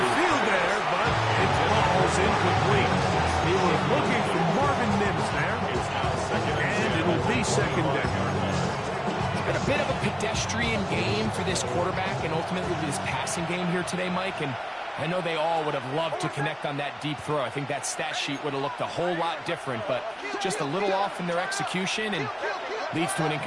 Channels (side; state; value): both; identical; correlation 1.00